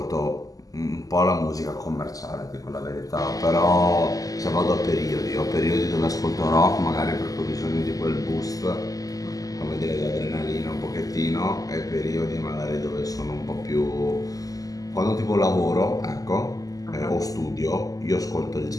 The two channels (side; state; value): right; late; 0.17 ms